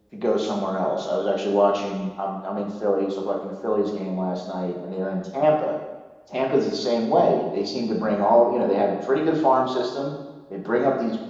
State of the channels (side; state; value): both; identical; correlation 1.00